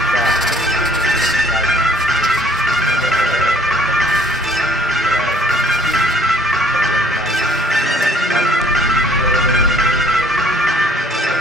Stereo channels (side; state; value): both; normal; correlation 0.57